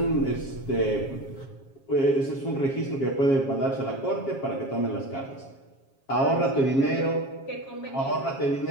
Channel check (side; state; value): right; late; 7.4 ms